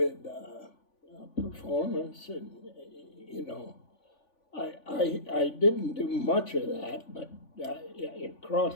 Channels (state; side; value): late; right; 3.5 ms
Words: performance, and you know, I didn't do much of that, but it